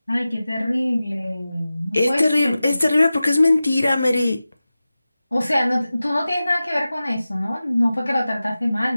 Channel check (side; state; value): both; inverted; correlation -0.95